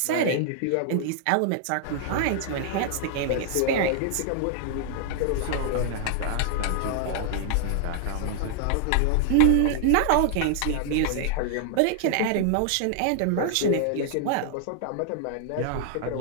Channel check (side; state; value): both; different; correlation 0.00